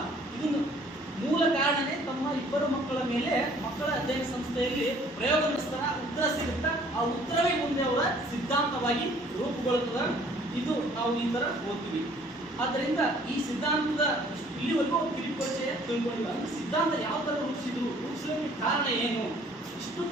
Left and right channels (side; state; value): both; normal; correlation 0.57